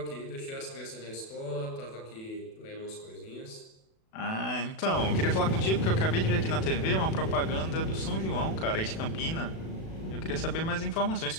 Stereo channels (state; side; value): late; right; 36 ms